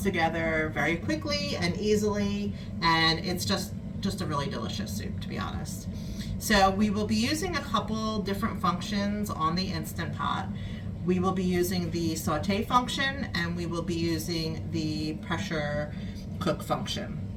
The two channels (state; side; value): identical; both; correlation 1.00